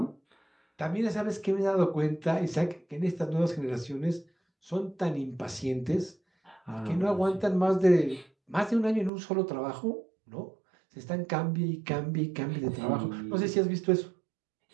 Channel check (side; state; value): left; drops out; at 9.1 s